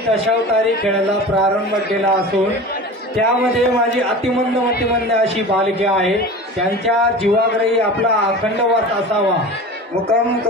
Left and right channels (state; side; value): normal; both; correlation 0.34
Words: दशावतारी खेळायला प्रारंभ केला असून त्यामध्ये माझी अतिमंद अशी बालके आहे, त्यांच्या जीवाग्रही आपला अखंड वास असावा। मुखम